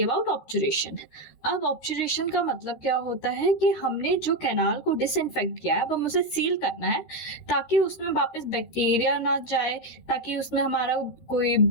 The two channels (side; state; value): right; late; 13 ms